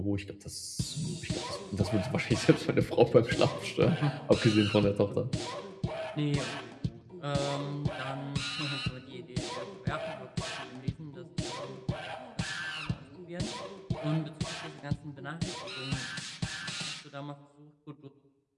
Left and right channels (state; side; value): identical; both; correlation 1.00